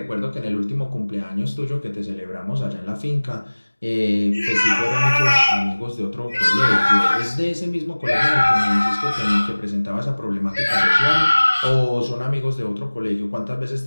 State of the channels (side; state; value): both; inverted; correlation -1.00